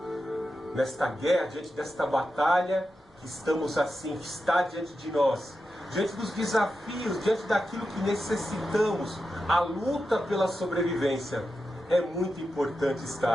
nesta guerra, diante desta batalha, que estamos assim, que está diante de nós, diante dos desafios, diante daquilo que necessitamos, a luta pela sobrevivência. É muito importante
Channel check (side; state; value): both; normal; correlation 0.90